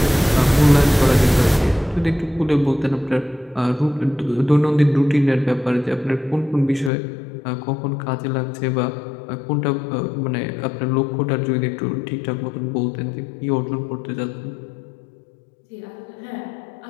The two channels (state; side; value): drops out; right; at 6.9 s